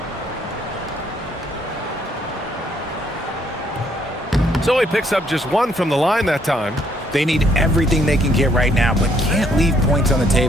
So he picks up just one from the line that time. They need everything they can get right now, but can't leave points on the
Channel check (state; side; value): normal; both; correlation 0.68